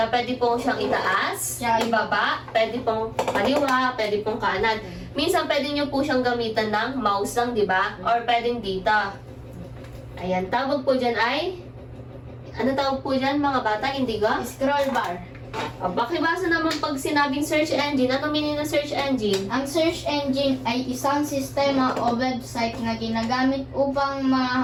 pwede pong siyang itaas, ibaba, pwede pong kaliwa, pwede pong kanan. Minsan pwede nyo po siyang gamitan ng mouse lang, di ba? Or pwedeng dito. Ayan, tawag po dyan ay, ano tawag po dyan mga bata, Indigo? Scroll bar. O, bakibasa naman pag sinabing search engine, ano meaning ng search engine? Ang search engine ay isang sistema o website na ginagamit upang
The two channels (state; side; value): identical; both; correlation 1.00